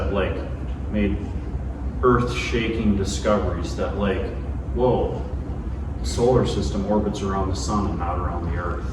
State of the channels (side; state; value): both; identical; correlation 1.00